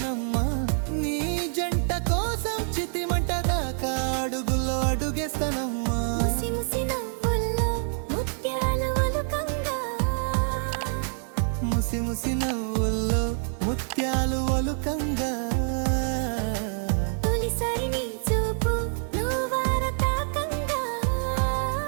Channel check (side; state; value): left; silent; 61 dB below the other